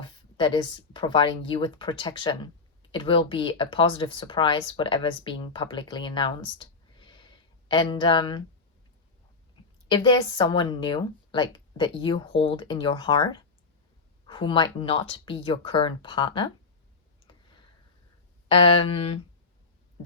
that is providing you with protection. It will be a positive surprise, whatever is being publicly announced. And if there's someone new, like that you hold in your heart, who might not be your current partner, then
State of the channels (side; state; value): right; quieter; 4.2 dB